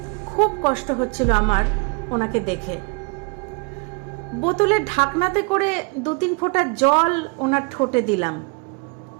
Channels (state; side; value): quieter; left; 33.0 dB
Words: খুব কষ্ট হচ্ছিল আমার ওনাকে দেখে। বোতলের ঢাকনাতে করে 2-3 ফোঁটা জল ওনার ঠোঁটে দিলাম,